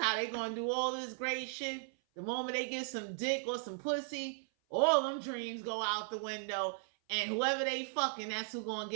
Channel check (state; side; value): silent; left; 53 dB below the other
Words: they going to do all this great shit. The moment they get some dick or some pussy, all them dreams go out the window. And whoever they fucking, that's who going to